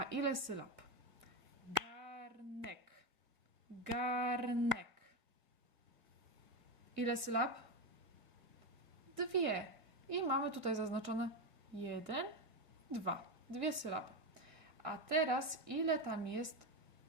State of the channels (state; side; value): late; left; 1.7 ms